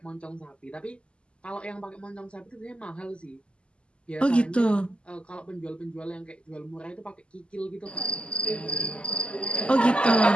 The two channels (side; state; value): right; late; 0.052 ms